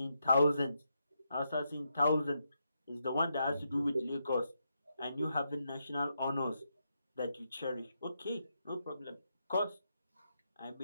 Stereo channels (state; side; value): inverted; both; correlation -0.82